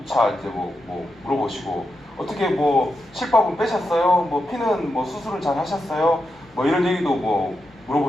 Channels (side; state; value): both; normal; correlation 0.86